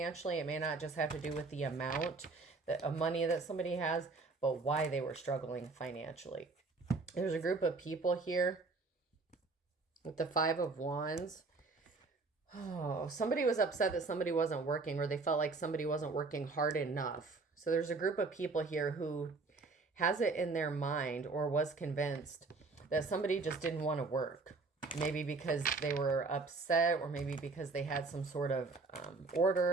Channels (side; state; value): left; quieter; 3.9 dB